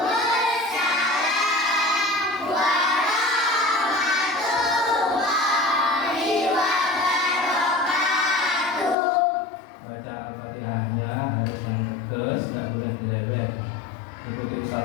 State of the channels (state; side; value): drops out; right; at 9.0 s